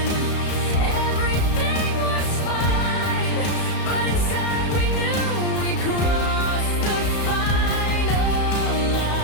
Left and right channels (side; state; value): right; late; 34 ms